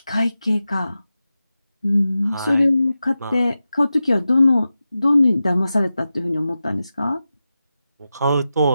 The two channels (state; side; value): inverted; both; correlation -0.93